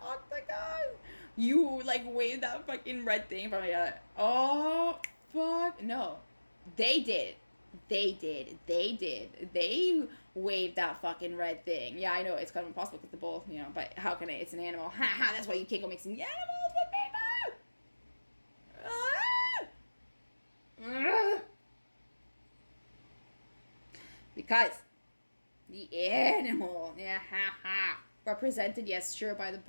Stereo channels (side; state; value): both; inverted; correlation -1.00